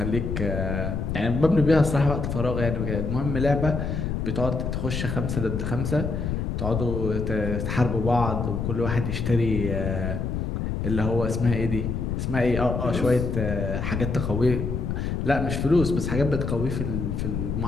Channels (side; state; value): left; noise; rumble, 2 dB below the sound